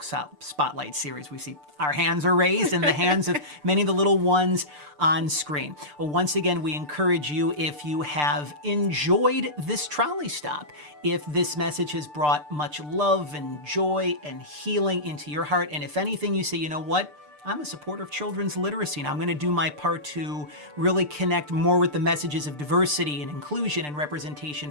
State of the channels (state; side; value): late; left; 6.7 ms